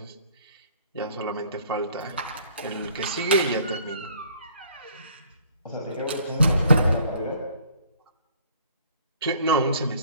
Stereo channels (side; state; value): both; inverted; correlation -0.58